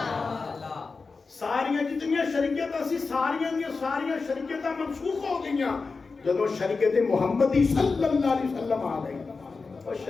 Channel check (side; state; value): right; quieter; 4.3 dB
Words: ساریاں جتنیاں شریعتاں سی ساریاں دیاں ساریاں شریعتاں منسوخ ہو گئیاں جدو شریعت محمدی صلی اللہ علیہ وسلم آ گئی. اور